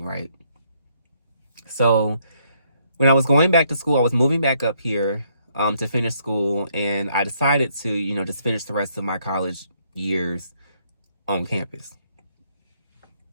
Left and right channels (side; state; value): both; inverted; correlation -0.71